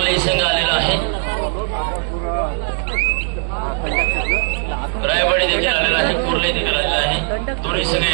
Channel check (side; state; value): left; silent; 67 dB below the other